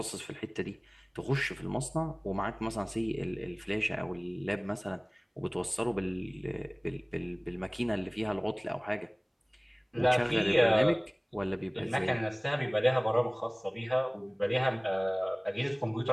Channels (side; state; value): both; identical; correlation 1.00